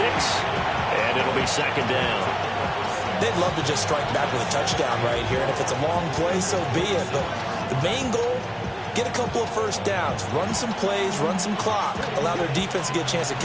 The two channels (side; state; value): both; identical; correlation 1.00